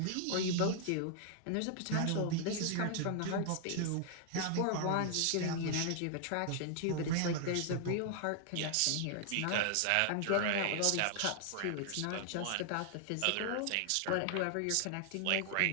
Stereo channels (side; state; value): both; different; correlation 0.00